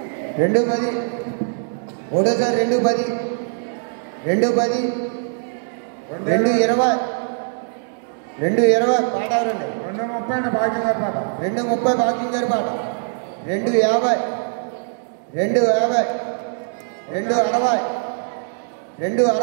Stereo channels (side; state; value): left; silent; digital silence